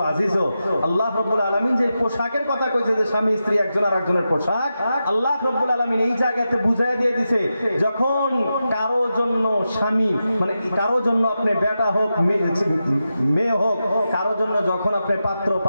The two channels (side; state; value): both; inverted; correlation -0.90